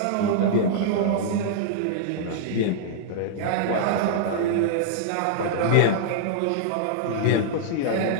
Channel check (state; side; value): different; both; correlation -0.02